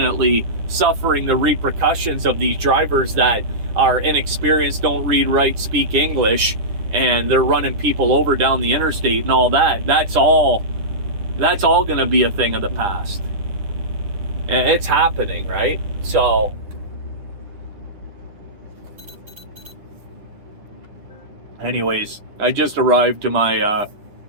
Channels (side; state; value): left; late; 10 ms